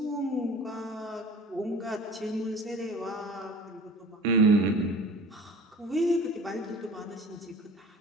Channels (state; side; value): normal; both; correlation 0.42